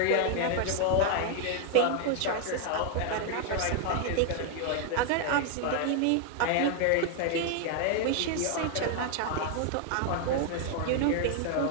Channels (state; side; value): different; both; correlation 0.00